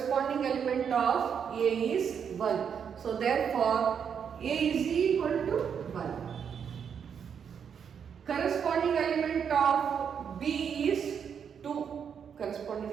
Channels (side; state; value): left; quieter; 7.4 dB